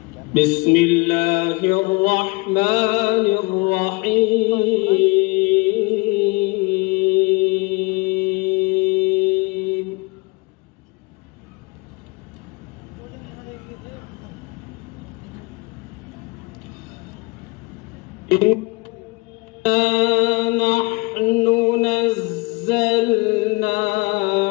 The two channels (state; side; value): quieter; right; 26.6 dB